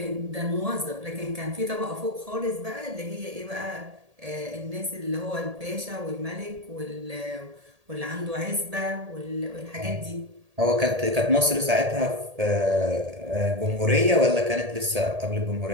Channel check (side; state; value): left; late; 1.8 ms